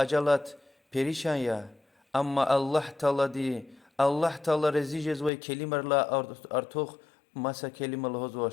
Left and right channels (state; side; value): drops out; right; at 5.3 s